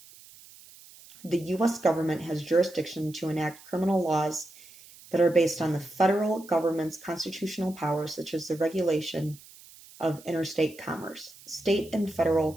The U.S. government has jurisdiction to enact criminal laws that are based on the federal government's constitutional powers, such as the regulation of interstate commerce. State and federal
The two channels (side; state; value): right; noise; hiss, 21 dB below the sound